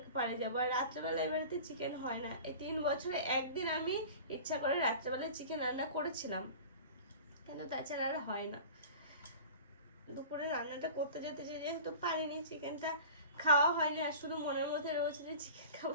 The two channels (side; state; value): both; inverted; correlation -0.38